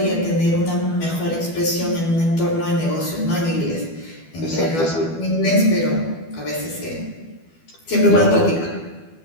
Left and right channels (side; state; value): right; late; 12 ms